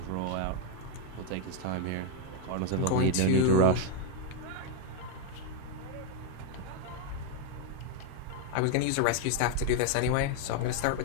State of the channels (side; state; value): both; different; correlation 0.01